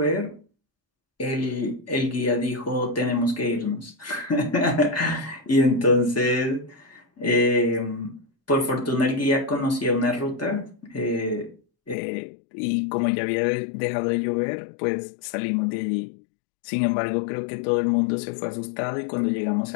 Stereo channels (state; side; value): drops out; right; at 12.0 s